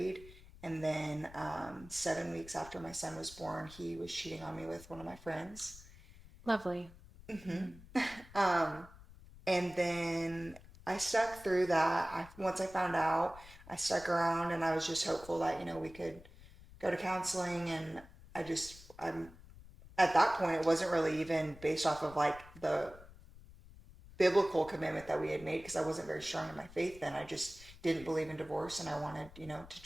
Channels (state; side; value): noise; left; rumble, 19 dB below the sound